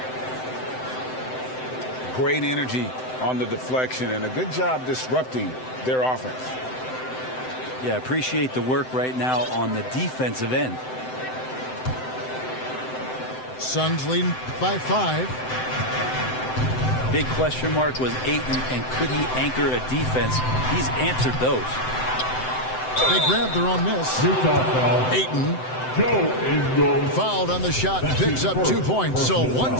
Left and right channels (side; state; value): right; late; 7.8 ms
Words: Great energy on the deflection and a good job disrupting their offense. Yeah, appreciate the work right now on the defensive end. Suns lead by 5. Big question mark was Ayton, and could he anchor a defense? He's answered those. They grabbed their own miss. Ayton fouled on the shot and picks up 2 points. So 1